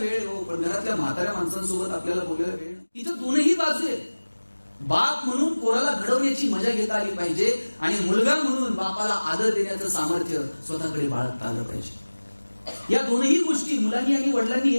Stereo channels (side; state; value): both; inverted; correlation -1.00